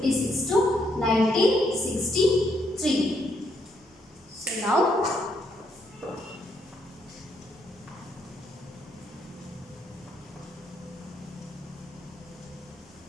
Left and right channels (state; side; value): normal; both; correlation 0.75